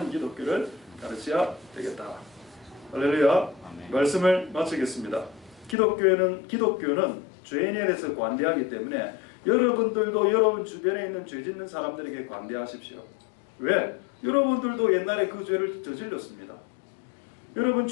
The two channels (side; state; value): right; drops out; at 5.8 s